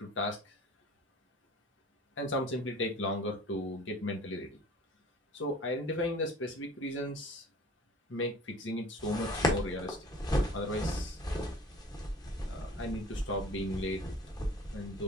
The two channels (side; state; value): both; normal; correlation 0.46